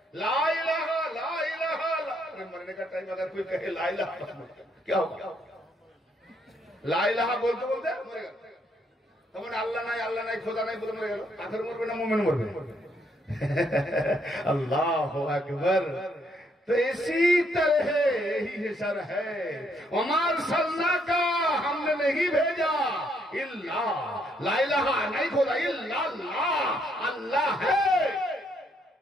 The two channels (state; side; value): normal; both; correlation 0.72